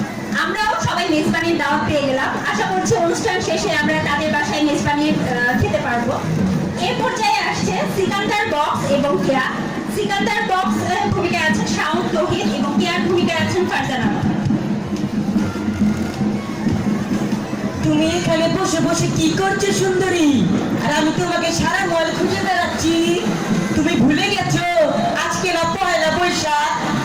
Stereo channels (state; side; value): noise; left; hum, 30 dB below the sound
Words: আমরাও সবাই মেজবানির দাওয়াত পেয়ে গেলাম। আশা করছি অনুষ্ঠান শেষে আমরা তাদের বাসায় মেজবানি খেতে পারবো। এ পর্যায়ে আসছে সিকান্দার বক্স এবং কেয়া। সিকান্দার বক্স ভূমিকায় আছেন শাওন তৌহিদ এবং কেয়ার ভূমিকায় আছেন ফারজানা। তুমি এখানে বসে বসে কি করছো সুন্দরী? আর আমি তোমাকে সারা মল খুঁজে বেড়াচ্ছি। তুমি ভুলে গেছো আজকে না পয়লা বৈশাখ,